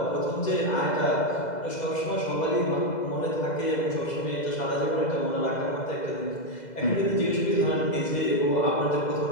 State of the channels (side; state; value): right; late; 2.0 ms